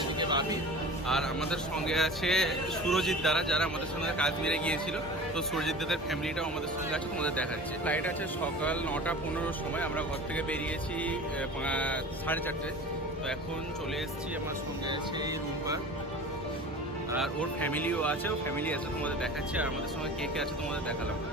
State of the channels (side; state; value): both; normal; correlation 0.38